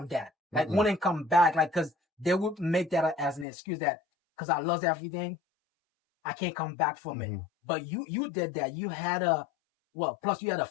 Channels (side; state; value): right; drops out; at 3.5 s